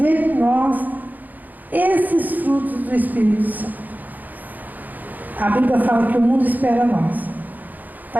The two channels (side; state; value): left; late; 0.083 ms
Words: em nós esses frutos do Espírito Santo. A Bíblia fala que o mundo espera nós,